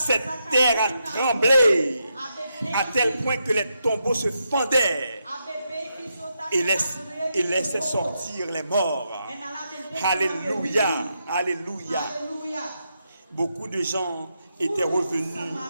terre a tremblé à tel point que les tombeaux se fendaient et laissaient sortir les morts. Alléluia. Alléluia. Beaucoup de gens étaient revenus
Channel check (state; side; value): inverted; both; correlation -0.83